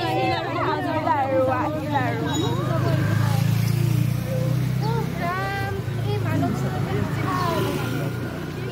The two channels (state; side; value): identical; both; correlation 1.00